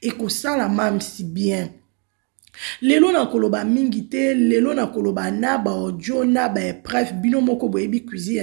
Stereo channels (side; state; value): left; quieter; 37.1 dB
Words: et que ça la mam si bien lelo na koloba mingi te lelo na koloba na ba audio na ba bref bino moko boyebi cuisine